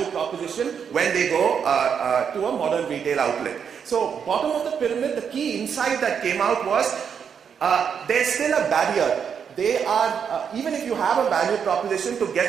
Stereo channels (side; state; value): left; quieter; 7.2 dB